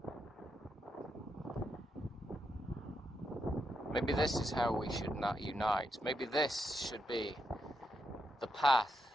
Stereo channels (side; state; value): both; normal; correlation 0.82